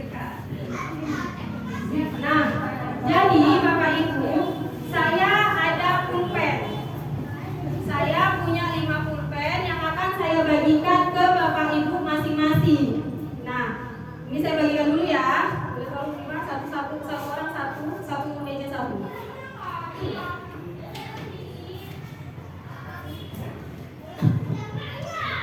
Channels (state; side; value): identical; both; correlation 1.00